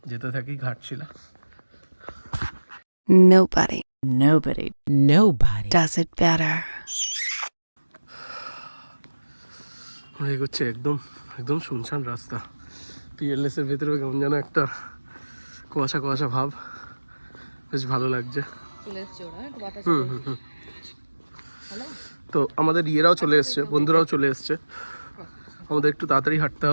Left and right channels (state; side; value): inverted; both; correlation -1.00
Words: যেতে থাকি Ghatshila. Nobody does it better. আমরা এগোচ্ছি, একদম একদম শুনশান রাস্তা। পিএলএসের ভেতরেও কেমন যেন একটা কুয়াশা কুয়াশা ভাব, বেশ ভালো লাগছে। তো আমাদের ইয়েরাও চলে এসছে, বন্ধুরাও চলে এসছে, আমাদের একটু তাড়াতাড়ি হাঁটতে